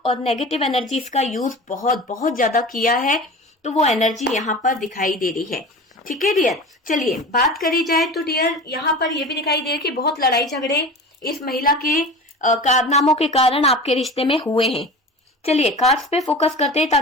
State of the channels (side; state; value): both; normal; correlation 0.34